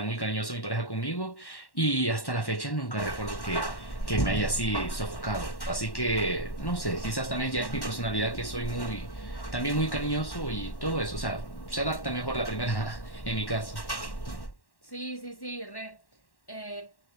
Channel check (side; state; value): right; late; 1.1 ms